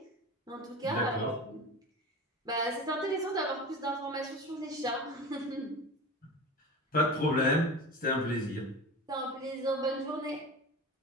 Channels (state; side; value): normal; both; correlation 0.31